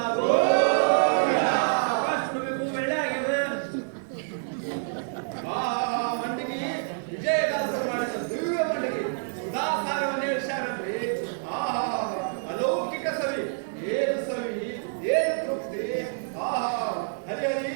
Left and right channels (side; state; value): left; silent; 60 dB below the other